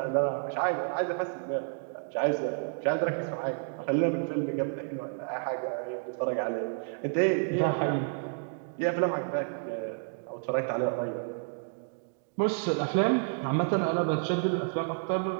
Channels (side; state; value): left; silent; 58 dB below the other